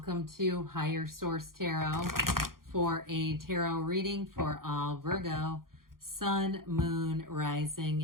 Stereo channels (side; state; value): left; late; 0.92 ms